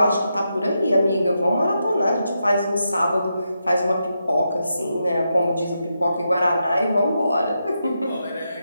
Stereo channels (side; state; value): both; inverted; correlation -0.85